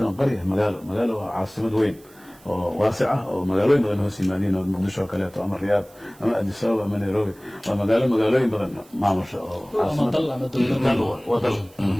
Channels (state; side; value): noise; right; hiss, 27 dB below the sound